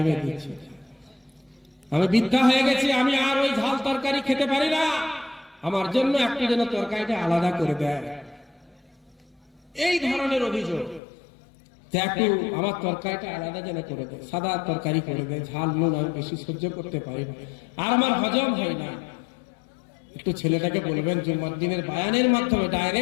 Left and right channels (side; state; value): right; drops out; at 11.0 s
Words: দিচ্ছে, আমি বৃদ্ধা হয়ে গেছি, আমি আর ওই ঝাল তরকারি খেতে পারি না, আমার জন্য একটু যেন তরকারিটা আলাদা করে দেয়। এই ধরনের অভিযোগ যে একটু আমার তরকারিটা আলাদা যেন করে দেয়, সাদা তরকারি করে দেয়, ঝাল নুন আমি বেশি সহ্য করতে পারি না, আর আমার হজম হয় না। একটু ছেলেটাকে বলবেন জুম্মার দিনের বায়ানের মাধ্যমে,